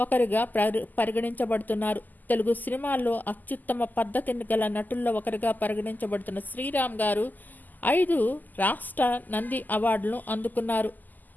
పరిగణించబడుతున్నారు. తెలుగు సినిమాల్లో అత్యుత్తమ పద్ధతిని గల నటుల్లో ఒకరిగా పరిగణించబడుతున్న శ్రీరామ్ గారు 5 రాష్ట్ర నంది అవార్డులను అందుకున్నారు.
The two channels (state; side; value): late; right; 0.084 ms